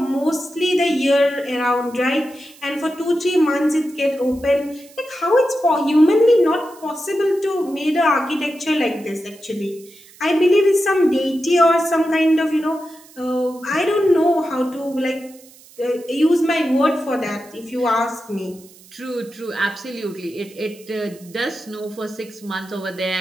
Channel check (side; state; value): right; noise; hiss, 24 dB below the sound